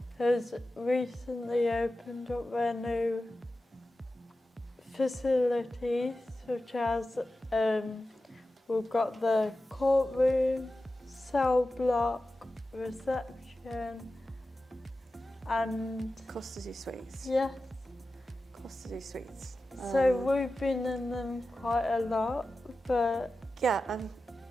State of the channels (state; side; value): normal; both; correlation 0.93